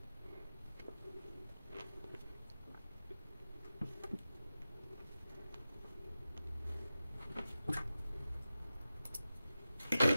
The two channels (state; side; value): inverted; both; correlation -0.93